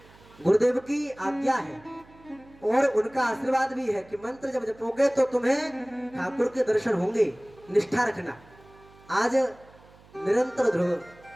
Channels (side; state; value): right; noise; hum, 26 dB below the sound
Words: गुरुदेव की आज्ञा है और उनका आशीर्वाद भी है कि मंत्र जब जपोगे तो तुम्हें ठाकुर के दर्शन होंगे। निष्ठा रखना। आज निरंतर ध्रुव